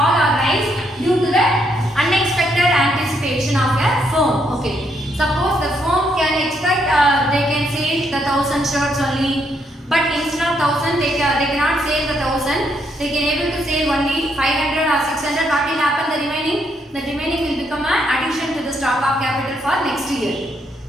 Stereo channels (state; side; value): normal; both; correlation 0.75